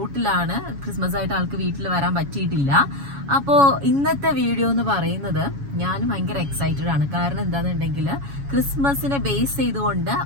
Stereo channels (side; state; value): left; late; 7.2 ms